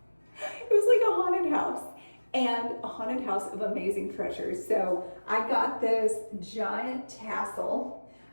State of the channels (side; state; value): both; inverted; correlation -1.00